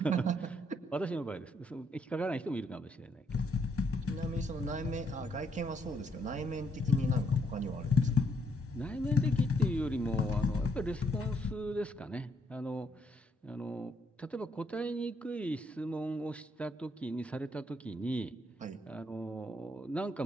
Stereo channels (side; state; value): both; normal; correlation 0.73